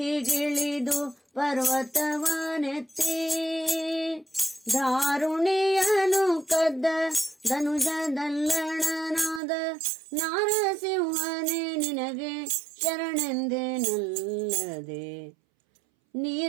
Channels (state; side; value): drops out; left; at 9.4 s